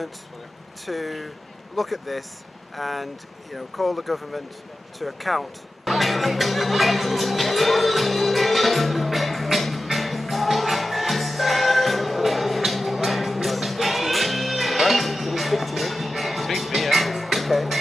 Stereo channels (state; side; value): normal; both; correlation 0.93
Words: to look at this and, you know, call the government to account. Okay.